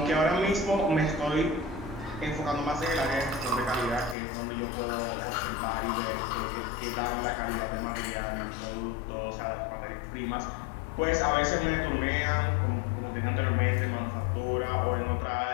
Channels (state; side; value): drops out; right; at 4.2 s